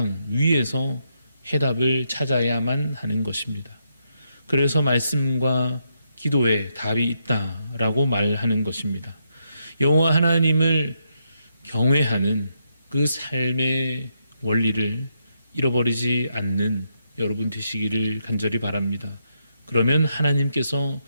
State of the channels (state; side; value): inverted; both; correlation -0.80